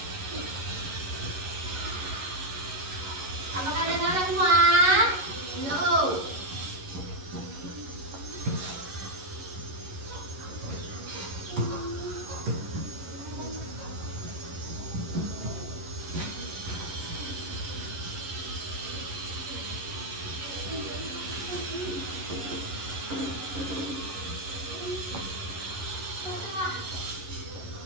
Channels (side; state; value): left; late; 11 ms